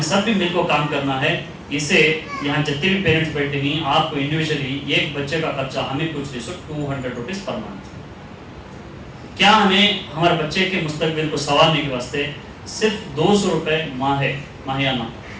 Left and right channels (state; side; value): identical; both; correlation 1.00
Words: सब भी मिलकर काम करना है। इसे यहाँ जितने भी पेरेंट्स बैठे हैं, आपको इंडिविजुअली एक बच्चे का खर्चा हमें कुछ नहीं, 200 रुपीज़ पर मंथ। क्या हमें हमारे बच्चे के मुस्तकबिल को संवारने के वास्ते सिर्फ 200 रुपये माहियाना